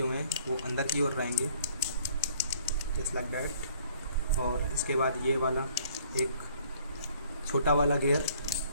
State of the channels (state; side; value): inverted; both; correlation -0.58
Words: हैं वो अंदर की ओर रहेंगे, जस्ट लाइक दैट। और इसके बाद ये वाला एक छोटा वाला गियर,